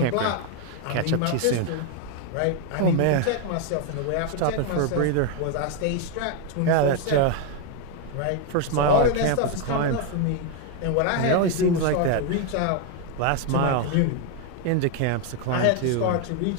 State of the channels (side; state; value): both; different; correlation 0.01